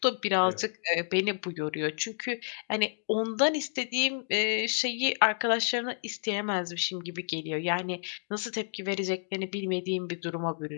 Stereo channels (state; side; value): silent; right; digital silence